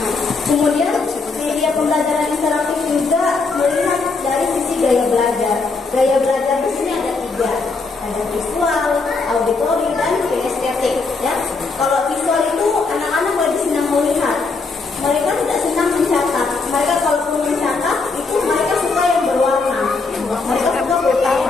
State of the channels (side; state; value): right; quieter; 4.1 dB